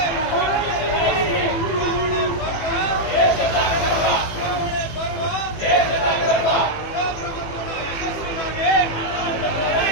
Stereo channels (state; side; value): late; right; 18 ms